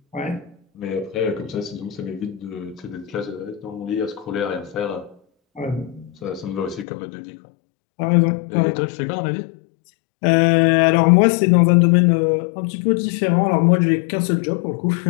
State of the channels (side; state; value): right; drops out; at 6.9 s